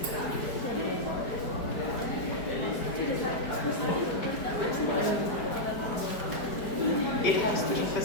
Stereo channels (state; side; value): late; right; 4.7 ms